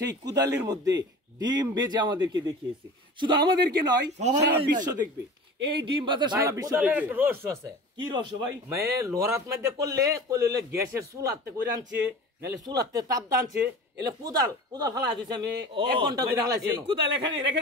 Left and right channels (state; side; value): normal; both; correlation 0.37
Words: কুদালের মধ্যে ডিম বেজে আমাদেরকে দেখিয়েছে শুধু আমাদেরকে নয় সারা বিশ্ব দেখবে এই ডিম বাজার সারা বিশ্ব দেখবে একটা রহস্য আছে কি রহস্য ভাই মানে লোরাত মধ্যে করলে গ্যাসের চুলাতে করে আনছে নালে চুলাতে তাপ দানছে এলে কুদাল ফালা দিয়েছে আমি 1 ঘন্টা ধরে হালাইছি এই কুদাল এখানে রেখে